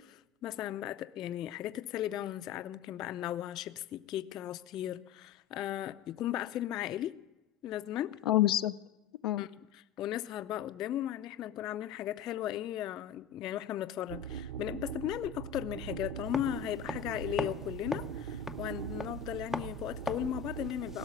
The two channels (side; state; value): right; quieter; 8.3 dB